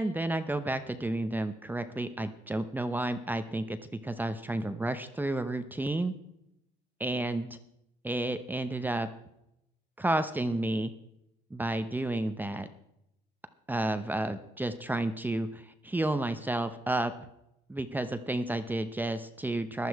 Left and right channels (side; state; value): both; normal; correlation 0.85